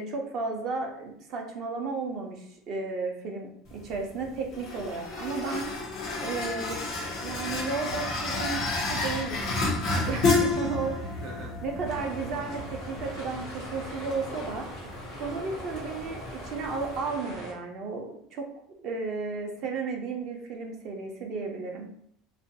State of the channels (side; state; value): both; normal; correlation 0.39